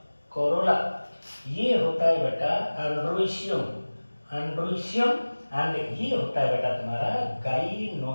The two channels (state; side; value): inverted; both; correlation -1.00